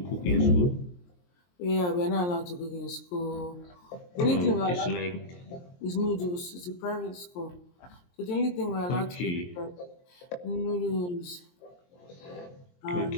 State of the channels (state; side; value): late; right; 23 ms